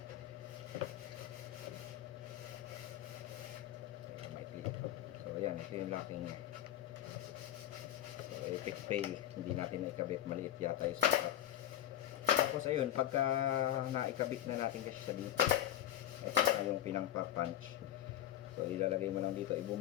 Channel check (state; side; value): quieter; right; 12.6 dB